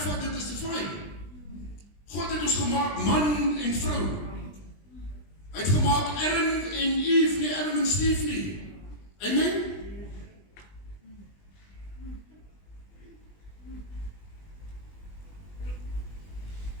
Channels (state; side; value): late; right; 20 ms